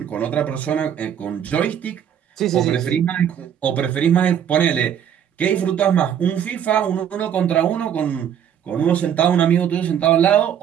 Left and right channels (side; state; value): left; quieter; 9.1 dB